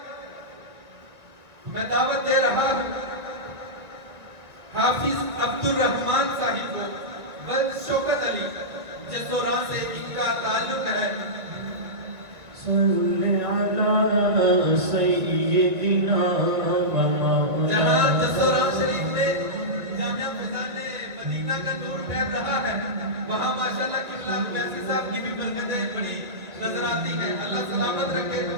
میں دعوت دے رہا ہوں حافظ عبد الرحمن صاحب کو ولد شوکت علی جسوران سے ان کا تعلق ہے۔ صلی علی سیدنا و مولانا۔ جہاں جسوران شریف میں جامعہ فضان مدینہ کا نور پھیل رہا ہے، وہاں ماشاءاللہ قبلہ اویسی صاحب کی بھی برکتیں بڑی نظر آتی ہیں، اللہ سلامت رکھے۔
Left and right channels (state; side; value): late; left; 1.7 ms